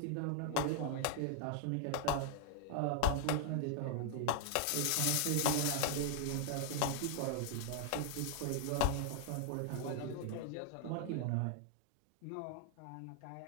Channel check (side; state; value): both; different; correlation 0.00